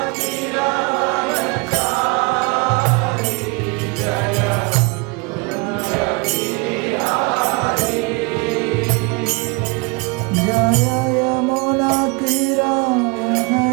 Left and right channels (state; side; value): quieter; left; 29.8 dB